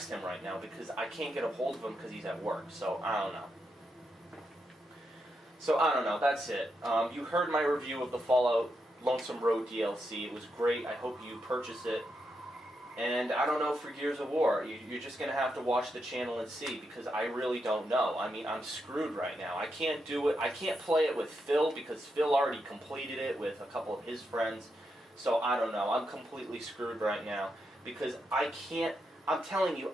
him right now because I can't get a hold of him because he's at work. So I don't know. That's it. You heard my review of the Fallout Lonesome Road DLC. It was great. I hope you purchase it. And I don't know for Gears of War. You're just going to have to watch the channel and see, because I really don't know. I mean, I'm screwed right now. I can't do it. I can't play it with Phil because Phil already completed it with a couple of his friends. So I don't know. I'm completely screwed right now because I can't. I'm telling you,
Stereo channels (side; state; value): both; normal; correlation 0.83